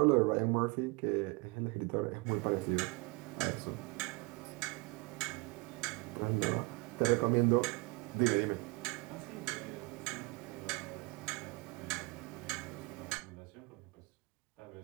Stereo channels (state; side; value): quieter; left; 27.1 dB